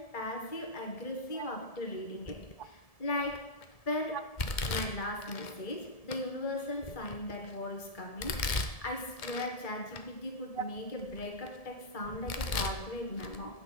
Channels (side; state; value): right; late; 1.7 ms